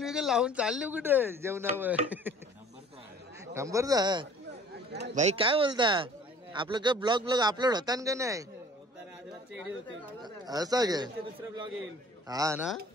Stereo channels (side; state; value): both; normal; correlation 0.50